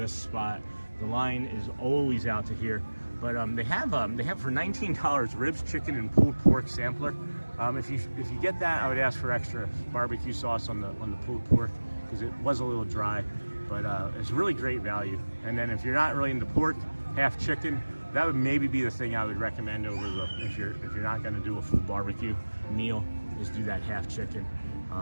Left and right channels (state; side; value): inverted; both; correlation -1.00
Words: spot. The line is always out to here. But they have for $19 ribs, chicken, and pulled pork sampler. If you get that, I would ask for extra barbecue sauce on the pulled pork because it was a little dry. But it's really great value. And then if you're not really into pork, half chicken, that would maybe be the thing I would recommend over the if you're not going to do a full barbecue meal, is do that half chicken.